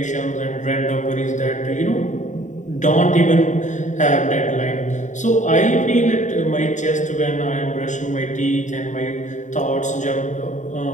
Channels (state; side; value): late; right; 0.36 ms